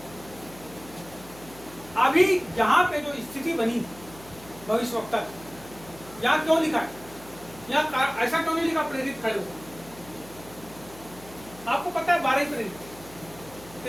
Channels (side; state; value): left; noise; hum, 20 dB below the sound